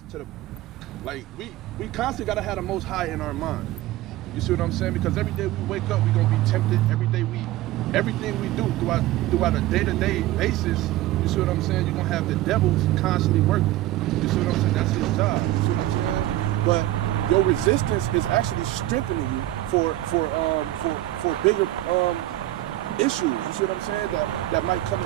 to the, like, we constantly gotta have the Most High in our mind. You see what I'm saying? Because every day we wake up, we gonna be tempted. Every day everything we do throughout a day-to-day basis, you see what I'm saying? You're gonna have the devils constantly working. You see what I'm saying? That's his job. You see what I'm saying? But your resistance is actually strengthening you for bigger issues. You see what I'm saying? That might come in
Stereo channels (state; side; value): quieter; left; 15.5 dB